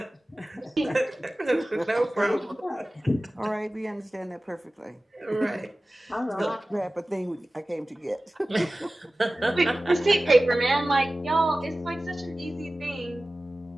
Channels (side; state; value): both; normal; correlation 0.97